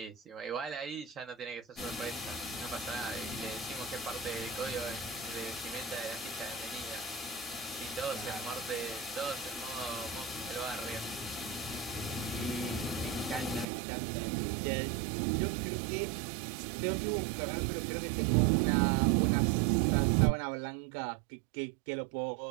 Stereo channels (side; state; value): left; drops out; at 13.7 s